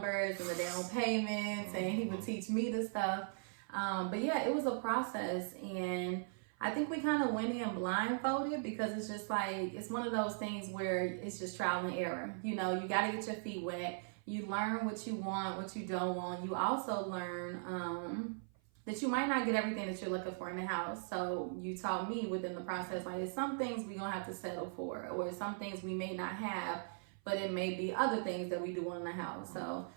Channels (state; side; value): silent; left; 52 dB below the other